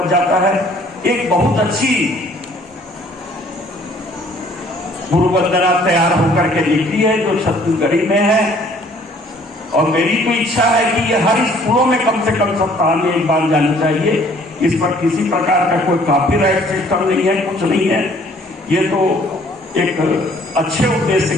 जाता है, एक बहुत अच्छी गुरु वंदना तैयार होकर के लिखी है जो छत्तीसगढ़ी में है। और मेरी तो इच्छा है कि ये हर स्कूलों में कम से कम सप्ताह में एक बार जानी चाहिए। इस पर किसी प्रकार का कोई कॉपीराइट सिस्टम नहीं है, कुछ नहीं है, ये तो एक अच्छे उद्देश्य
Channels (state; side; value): normal; both; correlation 0.58